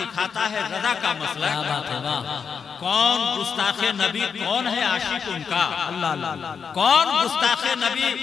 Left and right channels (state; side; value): quieter; right; 6.3 dB